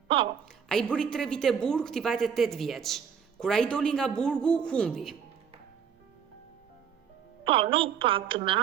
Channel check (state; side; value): quieter; left; 7.4 dB